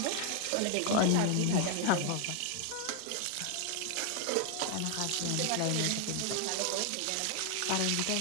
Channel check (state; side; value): different; both; correlation 0.00